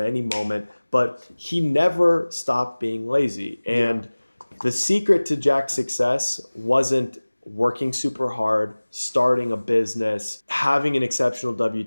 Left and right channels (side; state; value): both; inverted; correlation -1.00